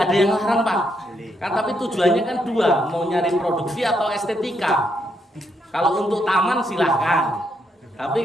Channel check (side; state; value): both; normal; correlation 0.77